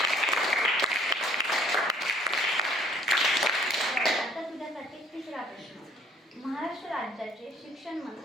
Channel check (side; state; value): both; normal; correlation 0.58